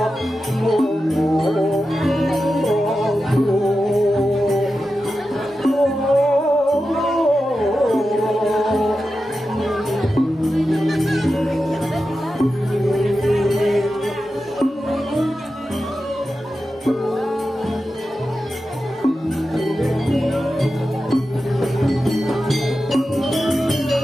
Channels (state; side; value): normal; both; correlation 0.91